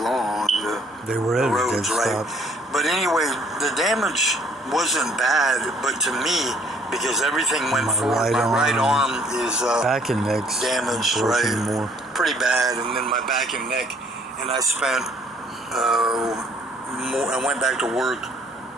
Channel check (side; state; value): both; normal; correlation 0.60